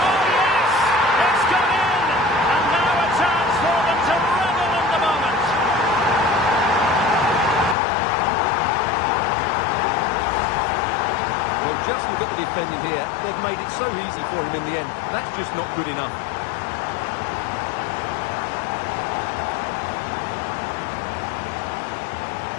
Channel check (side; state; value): right; drops out; at 7.8 s